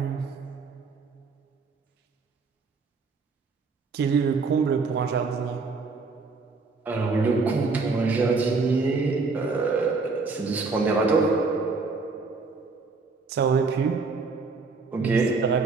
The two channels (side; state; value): left; quieter; 4.3 dB